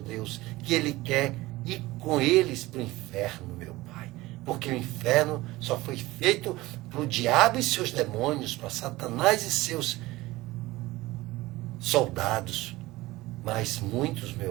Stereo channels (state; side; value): quieter; left; 19.2 dB